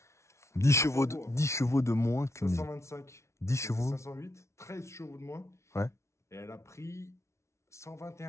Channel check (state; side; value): late; right; 0.13 ms